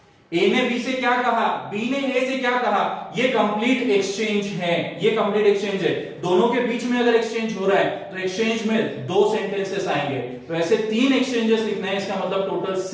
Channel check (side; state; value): both; identical; correlation 1.00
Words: ए ने बी से क्या कहा, बी ने ए से क्या कहा, ये कंप्लीट एक्सचेंज है, ये कंप्लीट एक्सचेंज है। दोनों के बीच में अगर एक्सचेंज हो रहा है तो एक्सचेंज में 2 सेंटेंसेस आएंगे, तो ऐसे 3 एक्सचेंजेस लिखना है, इसका मतलब टोटल